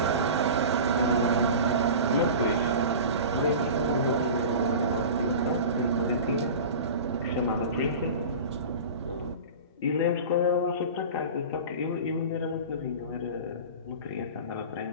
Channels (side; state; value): both; inverted; correlation -0.34